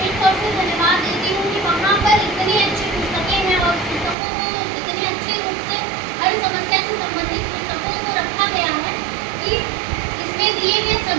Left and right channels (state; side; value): drops out; left; at 4.2 s